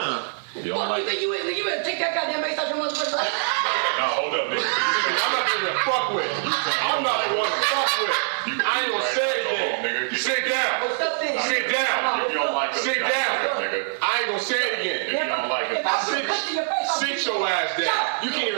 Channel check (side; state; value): left; silent; digital silence